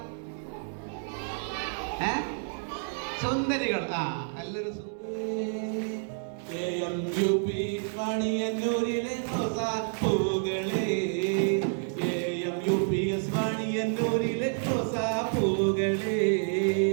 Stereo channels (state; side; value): silent; left; 58 dB below the other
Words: സുന്ദരികൾ. നല്ലൊരു വാണിയന്നൂരിലെ റോസാപ്പൂകളെ, വാണിയന്നൂരിലെ റോസാപ്പൂകളെ.